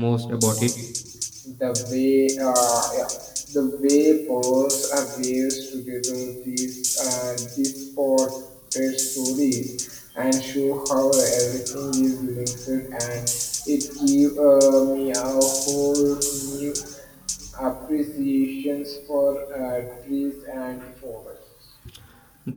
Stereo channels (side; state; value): both; identical; correlation 1.00